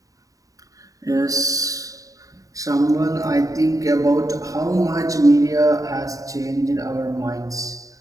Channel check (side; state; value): left; late; 0.16 ms